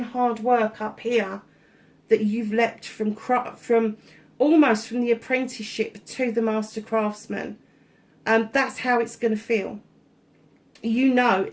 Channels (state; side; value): identical; both; correlation 1.00